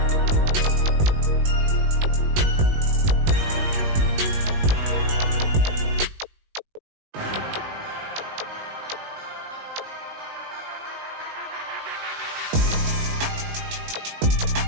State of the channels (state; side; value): late; left; 19 ms